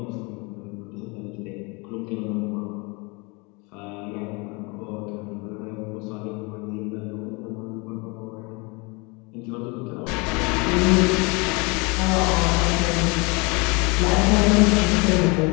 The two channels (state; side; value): quieter; right; 28.7 dB